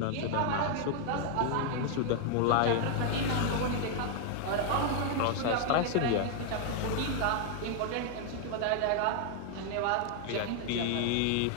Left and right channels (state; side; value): different; both; correlation 0.00